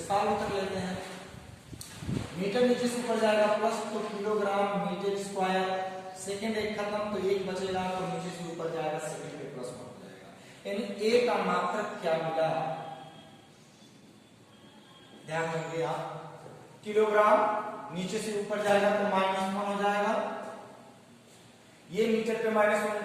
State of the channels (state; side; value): identical; both; correlation 1.00